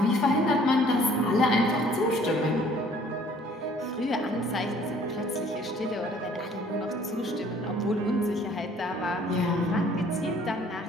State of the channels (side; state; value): both; normal; correlation 0.56